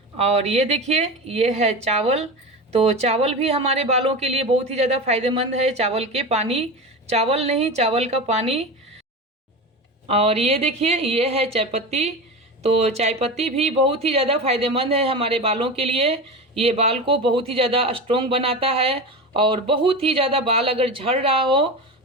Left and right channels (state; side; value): normal; both; correlation 0.25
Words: और ये देखिए ये है चावल। तो चावल भी हमारे बालों के लिए बहुत ही ज़्यादा फायदेमंद है। चावल के पानी, चावल नहीं, चावल का पानी। और ये देखिए ये है चायपत्ती। तो चायपत्ती भी बहुत ही ज़्यादा फायदेमंद है हमारे बालों के लिए। ये बाल को बहुत ही ज़्यादा स्ट्रॉन्ग बनाता है और बहुत ही ज़्यादा बाल अगर झड़ रहा हो